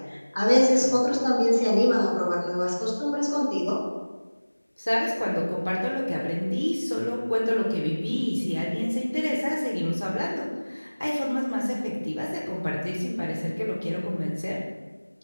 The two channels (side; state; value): both; inverted; correlation -1.00